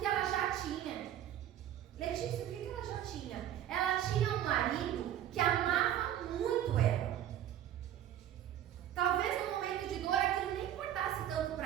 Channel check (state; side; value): quieter; left; 11.2 dB